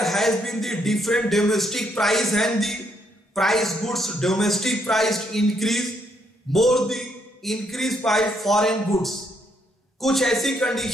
has been the different domestic price and the price goods domestic price increase more the increase by foreign goods। कुछ ऐसी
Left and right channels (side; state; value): both; normal; correlation 0.74